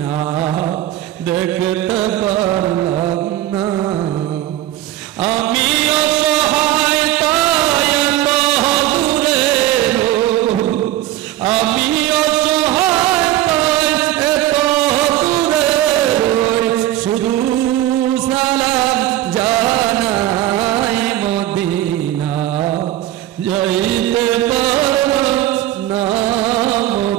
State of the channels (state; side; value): quieter; left; 14.2 dB